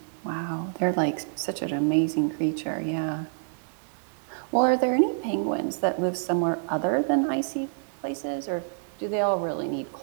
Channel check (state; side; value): silent; left; digital silence